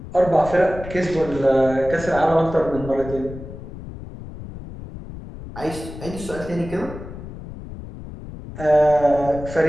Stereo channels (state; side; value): noise; left; rumble, 12 dB below the sound